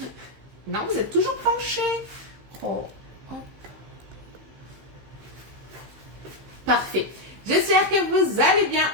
Non, vous êtes toujours penché. Oh, hop. Parfait. J'espère que vous allez bien.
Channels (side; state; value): left; late; 15 ms